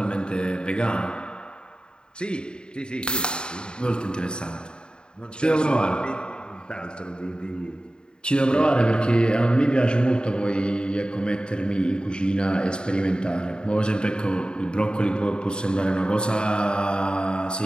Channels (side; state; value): right; late; 0.049 ms